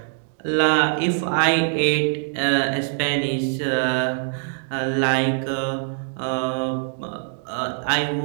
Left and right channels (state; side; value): silent; left; digital silence